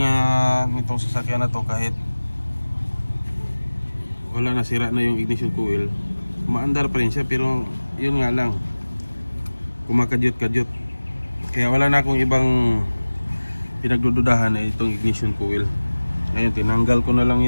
nga nitong sasakyan na to, kahit wala, nasira na yung ignition coil, maandar pa rin siya, pero yun nga lang, kumakadyot-kadyot. Kaya wala na akong ibang pinagdududahan na itong ignition coil. Ngayon tinanggal ko na lang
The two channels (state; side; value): inverted; both; correlation -1.00